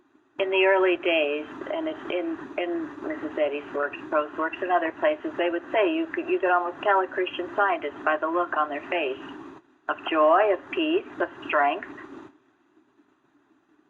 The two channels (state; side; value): identical; both; correlation 1.00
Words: In the early days, and it's in Mrs. Eddy's works, Pro's works, and other places, they would say you could almost tell a Christian scientist by the look on their face of joy, of peace, of strength.